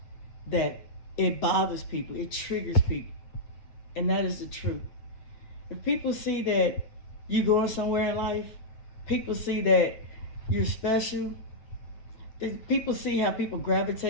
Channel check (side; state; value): right; late; 8.4 ms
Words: that it bothers people, it triggers people, and that is the truth. If people see that you going somewhere in life, people see that you're special, people see how people